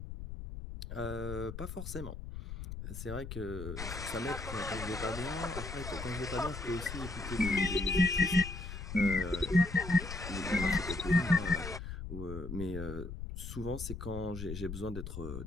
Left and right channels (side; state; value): left; noise; rumble, 8 dB below the sound